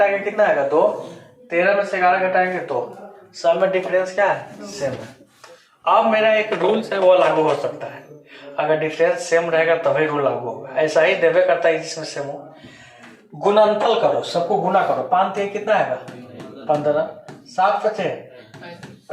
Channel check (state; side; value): identical; both; correlation 1.00